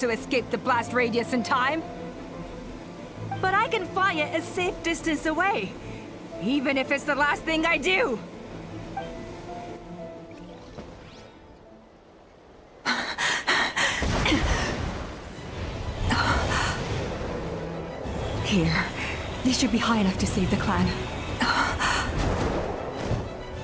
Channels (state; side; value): identical; both; correlation 1.00